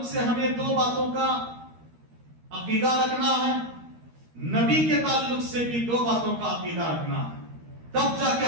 سے ہمیں 2 باتوں کا عقیدہ رکھنا ہے، نبی کے تعلق سے بھی 2 باتوں کا عقیدہ رکھنا ہے، تب جا کے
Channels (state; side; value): late; left; 13 ms